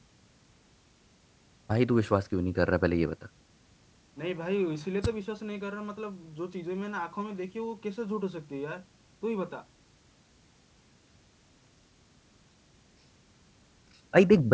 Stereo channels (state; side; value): identical; both; correlation 1.00